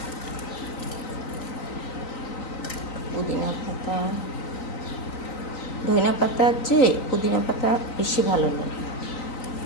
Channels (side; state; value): right; late; 3.9 ms